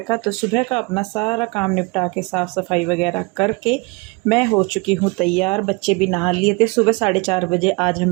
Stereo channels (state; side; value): quieter; left; 27.8 dB